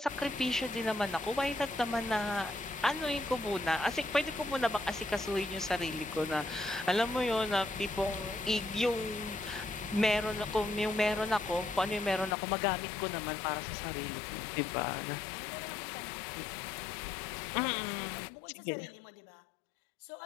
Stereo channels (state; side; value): drops out; right; at 12.4 s